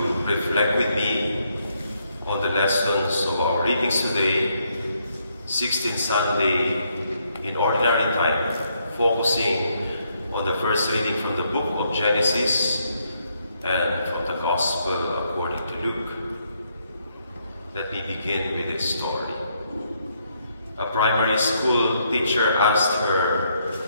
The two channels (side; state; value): both; inverted; correlation -0.75